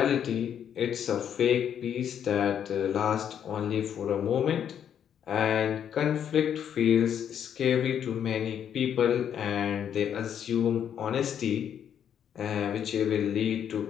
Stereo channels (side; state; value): right; quieter; 9.0 dB